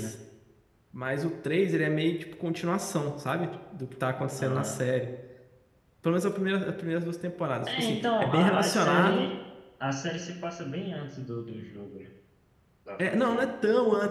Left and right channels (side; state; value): both; identical; correlation 1.00